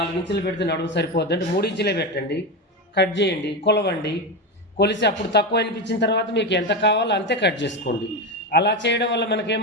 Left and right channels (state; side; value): normal; both; correlation 0.16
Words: ఇంచులు పెడితే నడుము సరిపోద్ది అంటే 3 ఇంచులే పెట్టండి, కట్ చేయండి, కొలవండి. కొలిసి అప్పుడు తక్కువ అనిపించిన తర్వాత మీకు ఎంత కావాలో అంతే కట్ చేసుకోండి. అలా చేయడం వల్ల